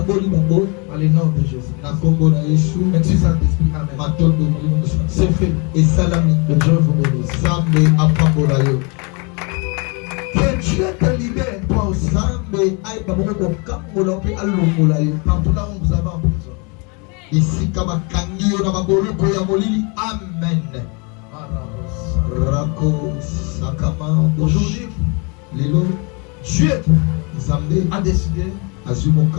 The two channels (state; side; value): quieter; right; 32.2 dB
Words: le nom de Jésus. Merci Saint-Esprit. Amen. C'est fait. Et salami. Que Dieu vous bénisse. Que Dieu te libère, toi aussi. Partout là où vous avez en prison. Ici, Kamakangio Namaboloko Yamolili. Amen. Rako Sakama. Aujourd'hui, Lelo, Dieu a décidé